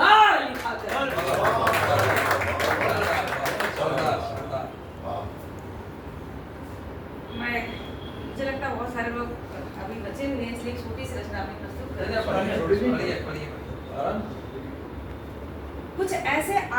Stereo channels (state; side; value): identical; both; correlation 1.00